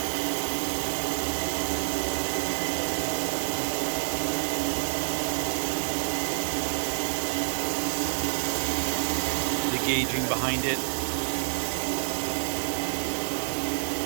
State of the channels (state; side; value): silent; left; digital silence